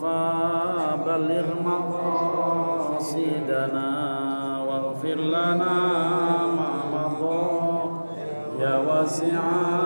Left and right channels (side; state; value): both; inverted; correlation -1.00